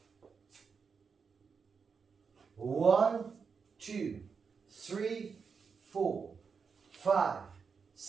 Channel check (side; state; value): left; quieter; 5.7 dB